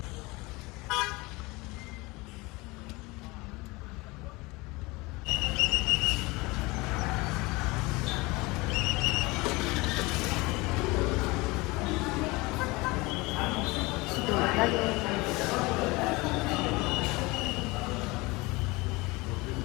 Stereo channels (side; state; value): right; quieter; 23.7 dB